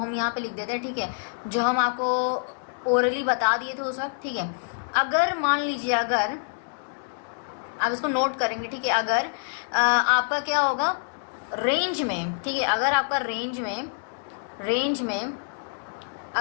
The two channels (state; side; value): silent; right; digital silence